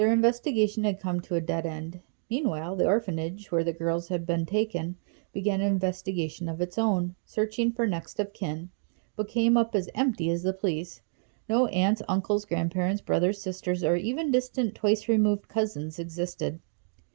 investigation had come to a dead end. Meanwhile, the orphanage, where the girls had been taken, began an investigation of its own, searching for next of kin, but came up as empty as the police. No aunts, uncles, grandparents, brothers, sisters, or even distant twice-removed cousins existed.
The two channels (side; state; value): left; silent; digital silence